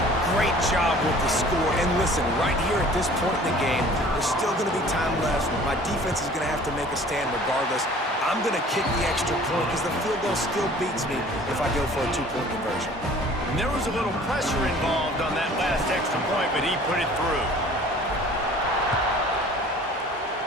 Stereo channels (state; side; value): normal; both; correlation 0.49